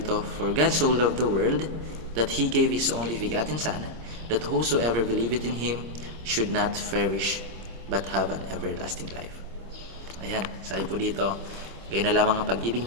"For God so loved the world that He gave His only begotten Son, that whosoever believeth in Him should not perish, but have an everlasting life." Ayan, sabi po dito, gayon na lamang ang pag-ibig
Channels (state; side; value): late; left; 26 ms